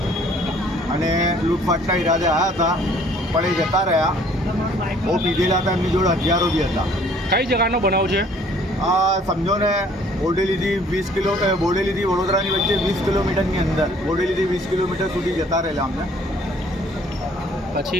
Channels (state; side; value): normal; both; correlation 0.58